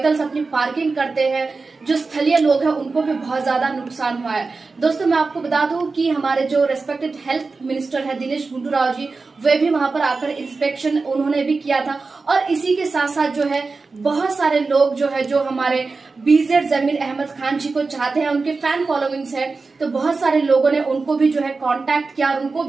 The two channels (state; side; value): quieter; left; 4.1 dB